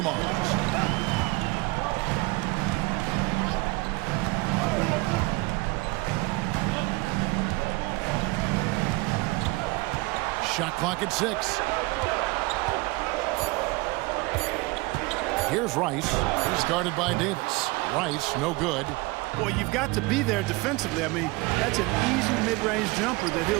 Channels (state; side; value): quieter; left; 23.5 dB